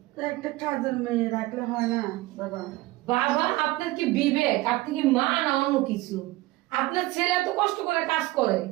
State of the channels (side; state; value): left; quieter; 19.1 dB